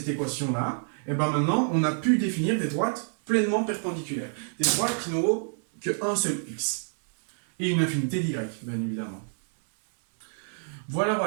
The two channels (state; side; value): silent; left; 60 dB below the other